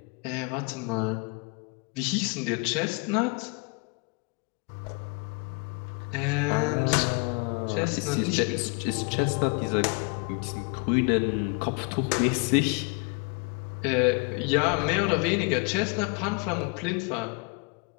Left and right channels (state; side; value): quieter; right; 30.4 dB